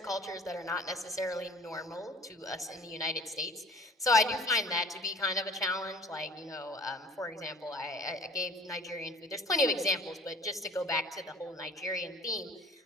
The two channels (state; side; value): normal; both; correlation 0.48